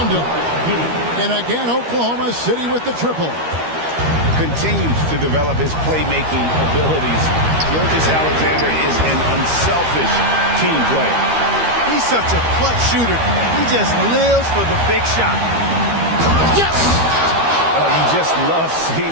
him. And again, Oklahoma City with the triple. continues to develop his playmaking abilities. Gilgeous-Alexander is an unselfish team player. He's such a clutch shooter. He just lives for the big shot. Yes! You just love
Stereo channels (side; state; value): left; late; 13 ms